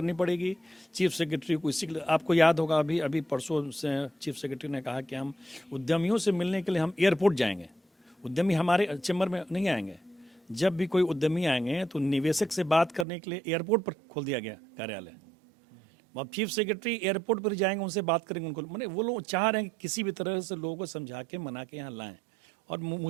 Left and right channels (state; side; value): drops out; left; at 13.1 s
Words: पड़ेगी, चीफ सेक्रेटरी को। इसी आपको याद होगा अभी परसों से चीफ सेक्रेटरी ने कहा कि हम उद्यमियों से मिलने के लिए हम एयरपोर्ट जाएंगे, उद्यमी हमारे चैम्बर में नहीं आएंगे। जब भी कोई उद्यमी आएंगे तो निवेशक से बात करने के लिए एयरपोर्ट पर खोल दिया गया कार्यालय। अब चीफ सेक्रेटरी एयरपोर्ट पर जाएंगे, उनसे बात करेंगे, उनको मैंने वो लोग चाह रहे हैं कि किसी भी तरह से लोगों को समझा के मना के यहाँ लाएं। और